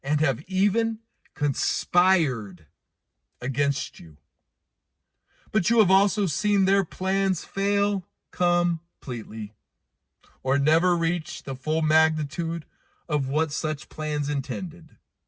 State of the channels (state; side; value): identical; both; correlation 1.00